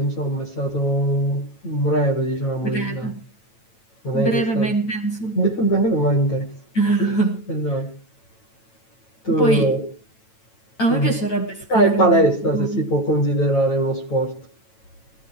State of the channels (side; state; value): right; late; 9.0 ms